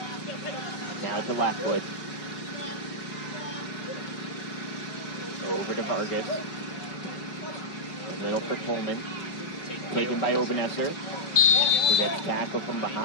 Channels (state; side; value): late; right; 5.3 ms